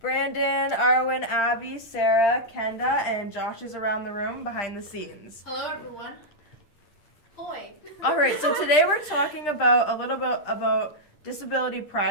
Arwen, Abby, Sarah, Kenda, and Josh is around the room behind the scenes. Hello everyone. Hoi. Alright, so today we're talking about a little bit about Disability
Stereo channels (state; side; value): late; right; 8.8 ms